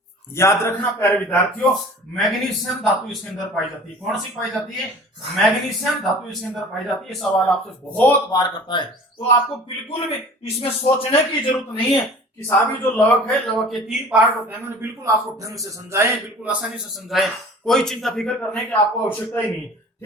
याद रखना प्यारे विद्यार्थियों, मैग्नीशियम धातु इसके अंदर पाई जाती है। कौन सी पाई जाती है? मैग्नीशियम धातु इसके अंदर पाई जाती है। सवाल आपसे बहुत बार करता है, तो आपको बिल्कुल भी इसमें सोचने की जरूरत नहीं है कि साहब जो लवक है, लवक के 3 पार्ट होते हैं। मैंने बिल्कुल आपको ढंग से समझाए, बिल्कुल आसानी से समझाए, कोई चिंता फिक्र करने की आपको आवश्यकता ही नहीं है।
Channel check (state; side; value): normal; both; correlation 0.44